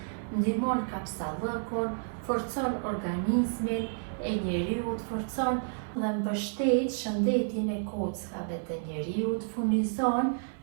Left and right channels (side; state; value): left; silent; digital silence